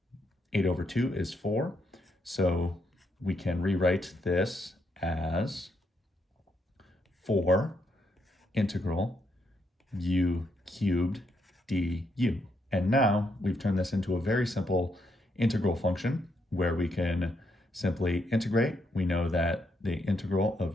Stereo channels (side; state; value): both; normal; correlation 0.77